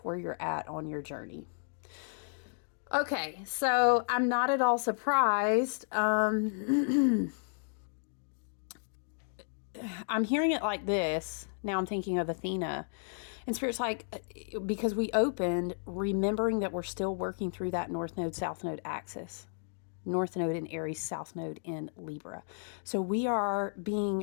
where you're at on your journey. Okay, so I'm not at all surprised. I'm hearing it like this. Now I'm thinking of Athena. And Spirit's like, because we opened remembering that we're still working through that North Node, South Node axis. North Node in Aries, South Node in Libra. So we are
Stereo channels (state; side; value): silent; right; digital silence